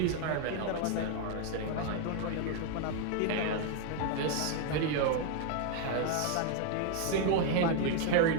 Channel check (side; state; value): both; different; correlation 0.00